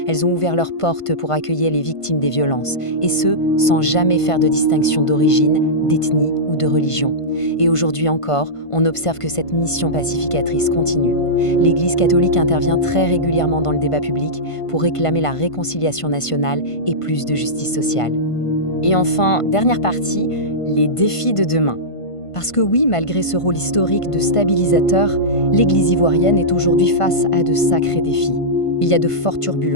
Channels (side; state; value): right; late; 1.5 ms